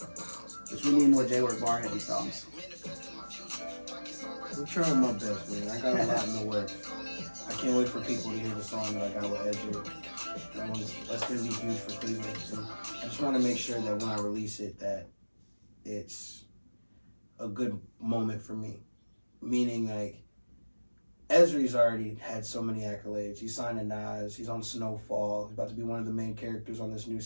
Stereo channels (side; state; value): both; inverted; correlation -1.00